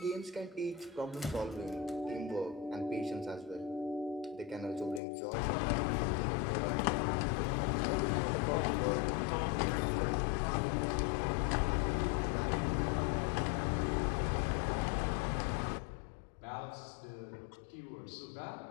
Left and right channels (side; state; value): right; drops out; at 5.0 s